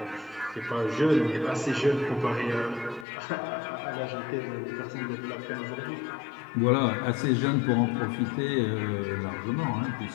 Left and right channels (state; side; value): drops out; right; at 3.1 s